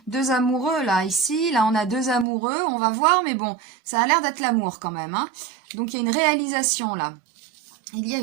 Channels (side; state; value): left; drops out; at 2.2 s